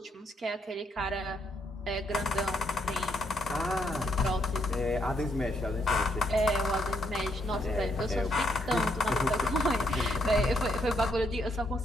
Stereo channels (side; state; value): both; normal; correlation 0.73